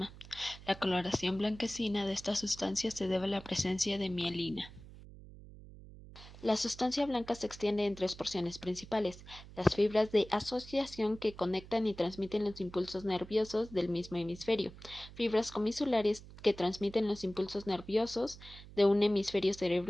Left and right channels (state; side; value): noise; right; hum, 17 dB below the sound